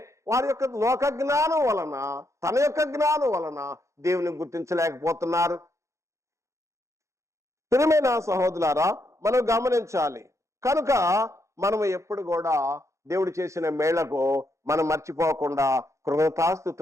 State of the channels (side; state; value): left; late; 0.14 ms